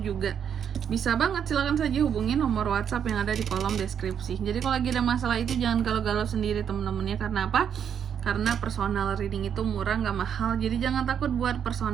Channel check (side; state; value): left; quieter; 8.2 dB